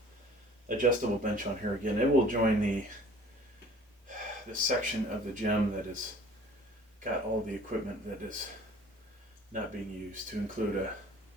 adjustable bench on here again. It will join the section of the gym that is got all the equipment that is not being used, to include a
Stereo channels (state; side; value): normal; both; correlation 0.50